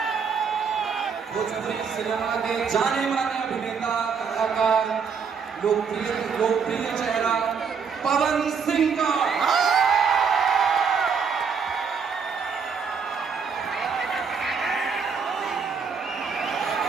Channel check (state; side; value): quieter; left; 6.0 dB